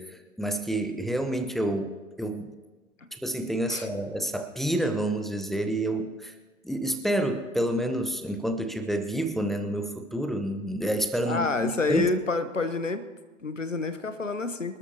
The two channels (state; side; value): normal; both; correlation 0.61